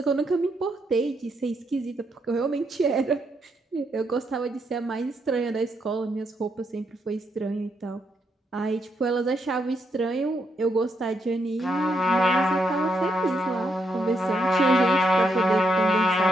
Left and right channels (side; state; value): both; normal; correlation 0.78